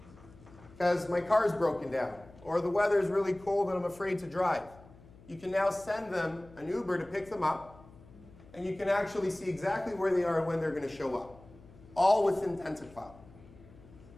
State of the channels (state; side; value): noise; left; hum, 22 dB below the sound